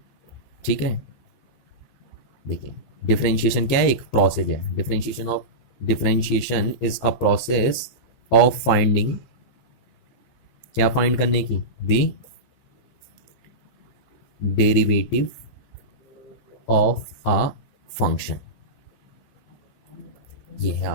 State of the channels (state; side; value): late; right; 15 ms